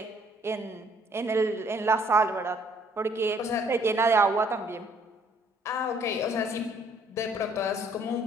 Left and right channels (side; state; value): both; normal; correlation 0.63